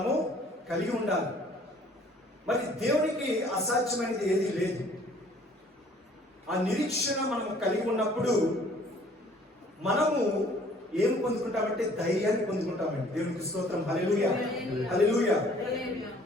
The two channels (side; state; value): both; normal; correlation 0.56